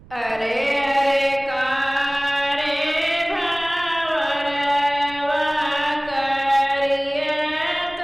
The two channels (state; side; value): noise; right; rumble, 23 dB below the sound